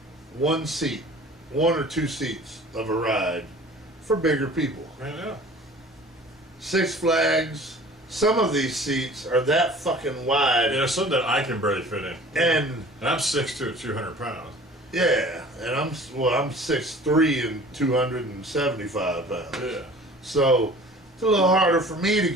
one or two seats of a ride for bigger people. I know. Six Flags, some of these seats are that fucking wide. Yeah, some that I can barely fit in. And I'm 6'2", 200 pounds. yeah, and I'm 6'3" and 275 pounds. Yeah. So it's a little harder for me to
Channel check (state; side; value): normal; both; correlation 0.46